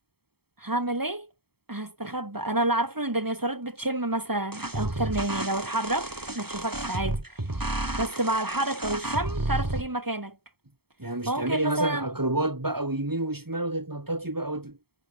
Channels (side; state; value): left; late; 0.96 ms